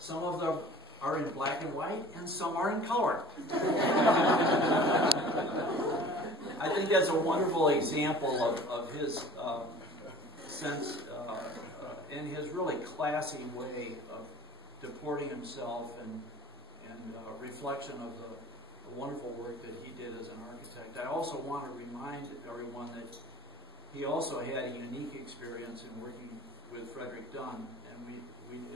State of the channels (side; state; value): both; normal; correlation 0.45